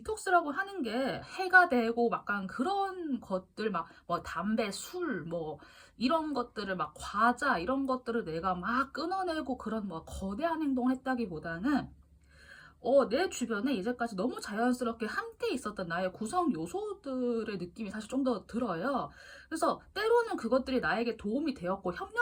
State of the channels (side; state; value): both; identical; correlation 1.00